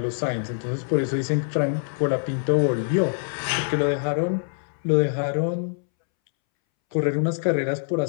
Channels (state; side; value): silent; right; 62 dB below the other